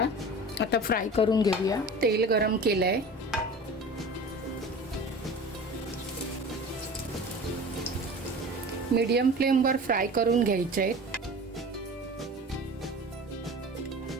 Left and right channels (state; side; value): normal; both; correlation 0.38